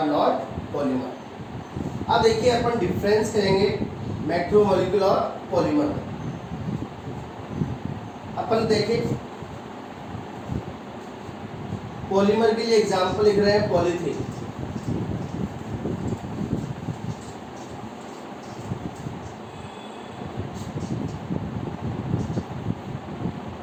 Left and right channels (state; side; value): identical; both; correlation 1.00